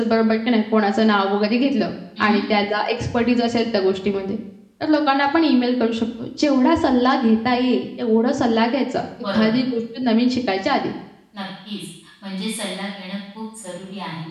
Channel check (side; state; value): both; identical; correlation 1.00